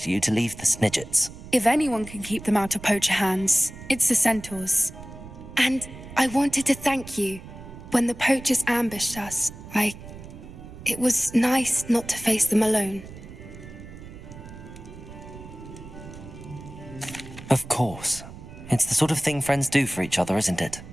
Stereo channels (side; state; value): right; noise; rumble, 15 dB below the sound